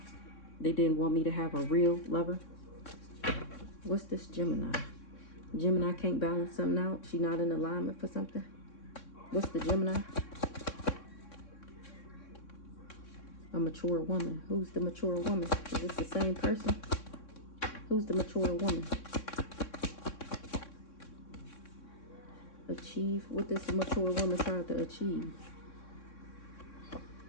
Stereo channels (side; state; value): right; late; 3.6 ms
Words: They didn't want me to have a real lover. What's this Gemini? Gemini can't balance something out. She not in alignment for something. What's the Gemini? A mature woman. Who's the mature woman? Is this the same person? Who's the mature woman? Achieve. What this mature woman tried to achieve?